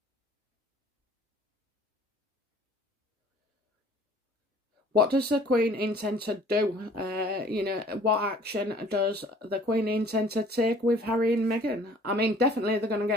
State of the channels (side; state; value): both; normal; correlation 0.53